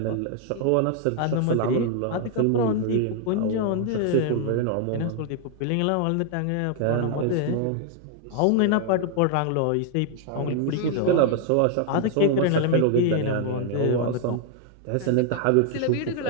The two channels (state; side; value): different; both; correlation 0.00